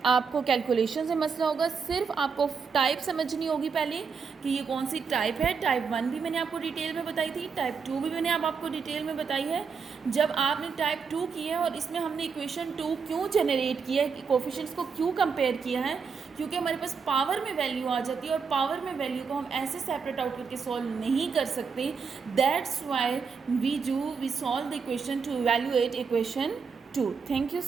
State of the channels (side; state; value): left; quieter; 5.6 dB